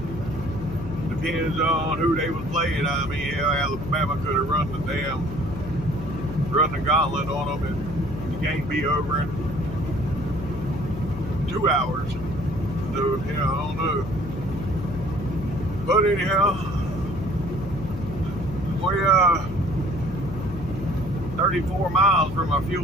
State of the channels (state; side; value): noise; left; hum, 9 dB below the sound